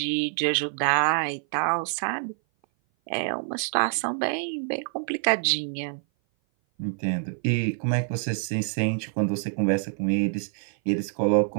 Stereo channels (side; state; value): left; silent; 57 dB below the other